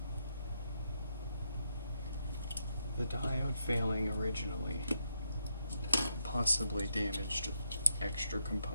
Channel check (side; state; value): both; inverted; correlation -0.80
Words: the diode failing originally possibly damaged extra